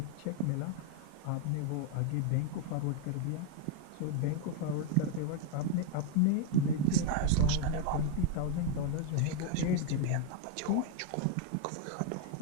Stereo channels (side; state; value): both; different; correlation 0.01